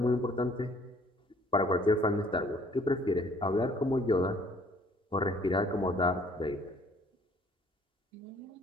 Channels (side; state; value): both; normal; correlation 0.59